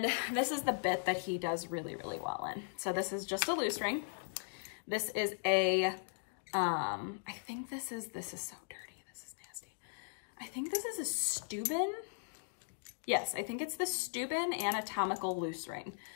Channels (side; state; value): right; silent; digital silence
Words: this is the bit that he does really, really well in. So this is just a loose ring. This is a, I think this is so dirty. This is nasty. I think this is a Steuben. Yes, I think it's the Steuben anatomical loose ring.